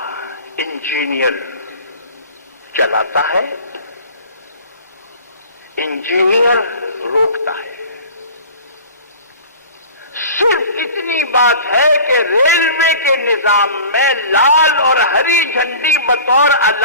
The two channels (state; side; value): inverted; both; correlation -0.41